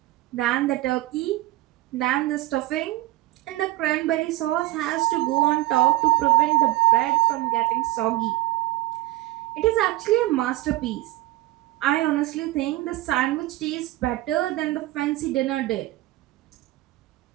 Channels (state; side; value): quieter; left; 17.5 dB